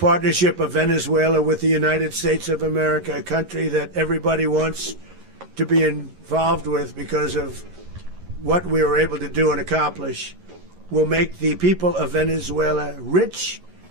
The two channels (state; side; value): late; left; 11 ms